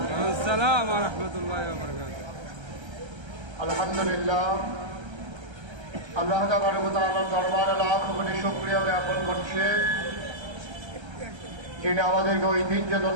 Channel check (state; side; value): late; left; 1.3 ms